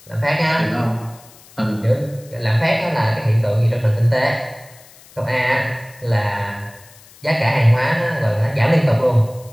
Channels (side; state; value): left; noise; hiss, 24 dB below the sound